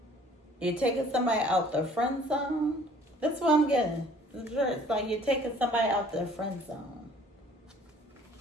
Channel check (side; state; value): both; normal; correlation 0.54